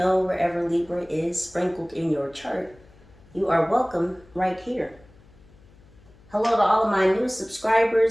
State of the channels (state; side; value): noise; left; hum, 26 dB below the sound